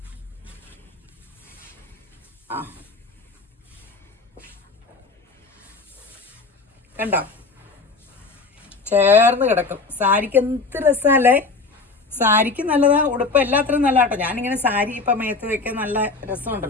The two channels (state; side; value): quieter; right; 3.9 dB